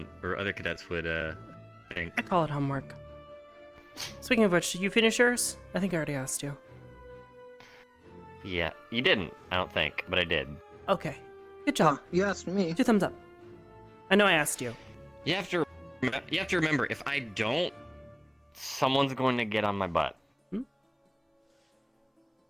or other cadets would think. I call it homework. Speaking of which, did you finish yours? I think I already asked you. Yeah, you didn't, I don't think, but I did. Okay. Good job. You asked me. 2 thumbs up. I know I asked you. You have to remember, if I don't, someone's going to get on my butt.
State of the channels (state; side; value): identical; both; correlation 1.00